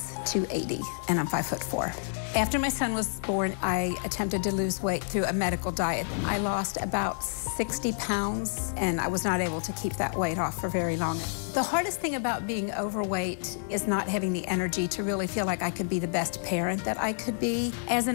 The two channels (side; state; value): right; silent; digital silence